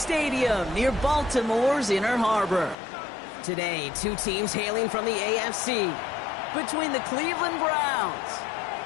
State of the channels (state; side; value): drops out; right; at 2.8 s